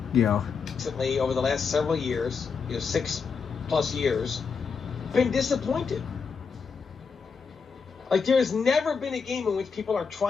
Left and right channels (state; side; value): quieter; right; 5.6 dB